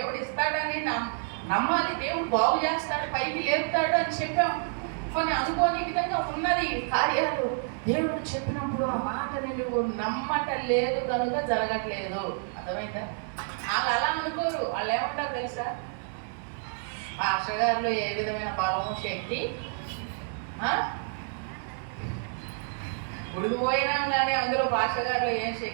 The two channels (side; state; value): left; silent; 59 dB below the other